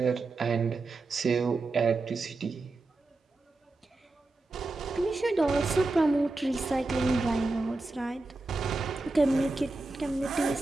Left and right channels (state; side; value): quieter; left; 3.3 dB